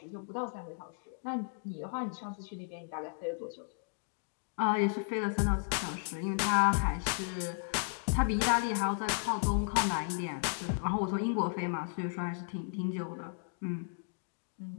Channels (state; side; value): silent; right; digital silence